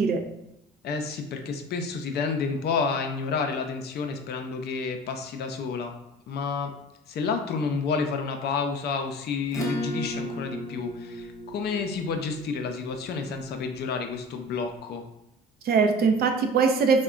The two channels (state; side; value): normal; both; correlation 0.39